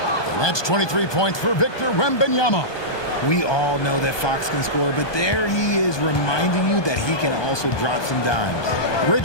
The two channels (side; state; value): right; late; 1.2 ms